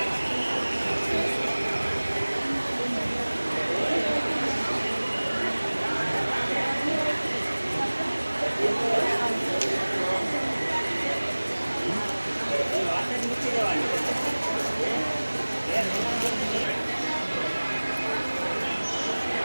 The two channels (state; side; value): inverted; both; correlation -1.00